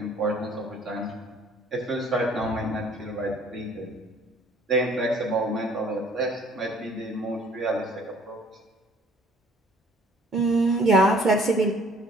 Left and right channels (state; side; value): normal; both; correlation 0.56